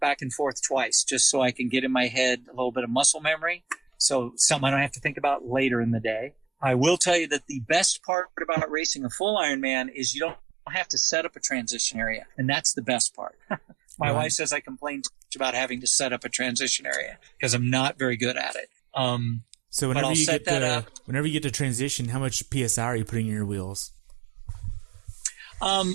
and forth twice just so I can get in my head a little bit of muscle memory. So something I don't have to think about later in the day. I will tell you that the best part about racing a full Ironman is you don't have to set up a transition area, and that's the best part. My wife says I complain too much about having to set up a transition area because I'm not very good at it. So whenever you get to transition, how much PSI are you putting in your wheels?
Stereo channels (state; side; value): drops out; left; at 8.0 s